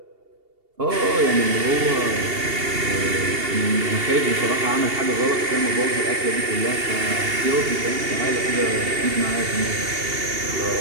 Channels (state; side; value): late; left; 2.8 ms